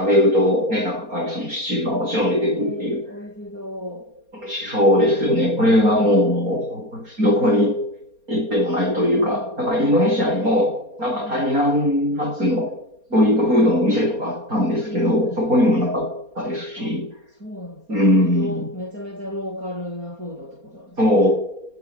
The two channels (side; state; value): left; late; 4.3 ms